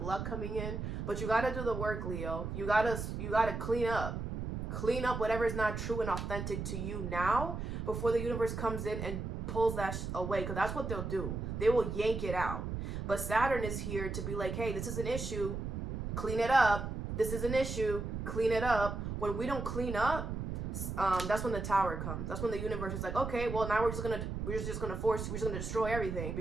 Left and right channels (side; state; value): right; noise; rumble, 4 dB below the sound